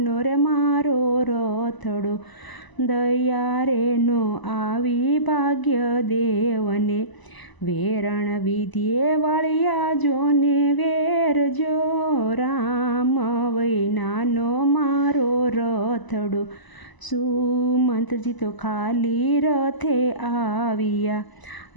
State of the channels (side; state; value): right; late; 1.0 ms